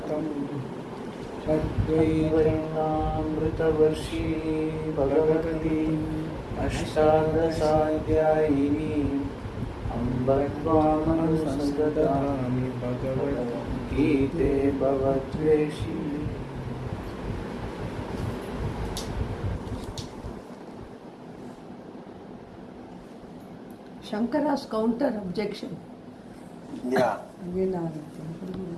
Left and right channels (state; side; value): identical; both; correlation 1.00